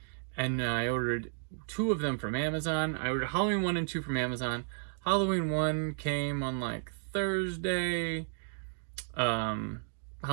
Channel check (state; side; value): silent; left; digital silence